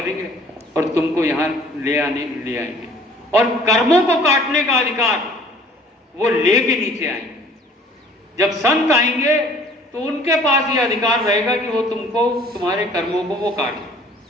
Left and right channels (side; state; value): both; normal; correlation 0.53